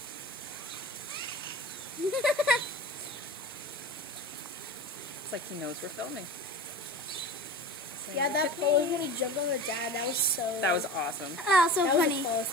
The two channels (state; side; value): normal; both; correlation 0.33